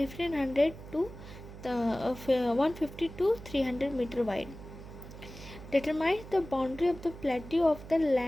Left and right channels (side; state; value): right; noise; hum, 14 dB below the sound